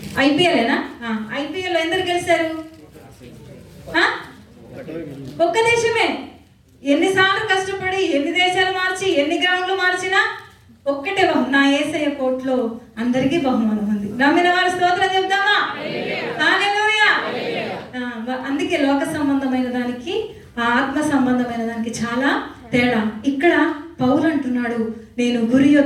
ఐపీఎల్నా? ఐపీఎల్ ఎందరు గెలిచారు? ఒక్క దేశమే. ఎన్నిసార్లు కష్టపడి ఎన్ని దేశాలు మార్చి ఎన్ని గ్రౌండ్లు మార్చినా ఒక్కటే నా యేసయ్య కోట్లో అందరికీ బహుమానం ఉంది. నమ్మిన వారి స్తోత్రం చెప్దామా? హల్లెలూయా. అందుకే లోక సంబంధమైన దానికి ఆత్మ సంబంధమైన దానికి చాలా తేడా. ఇక్కడ పౌలు అంటున్నాడు, నేను గురి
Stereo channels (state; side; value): identical; both; correlation 1.00